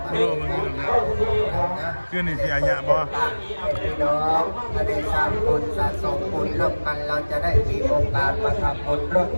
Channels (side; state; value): both; inverted; correlation -1.00